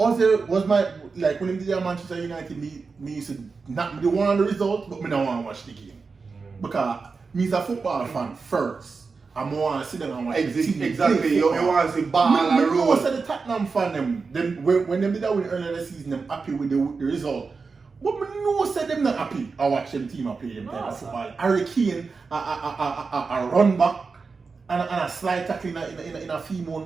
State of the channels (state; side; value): quieter; left; 4.6 dB